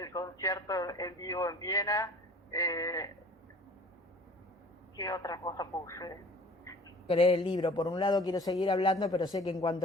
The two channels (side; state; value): both; normal; correlation 0.47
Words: concierto en vivo en Viena, ¿qué otra cosa puse? Leer el libro. Por un lado quiero seguir hablando, pero sé que en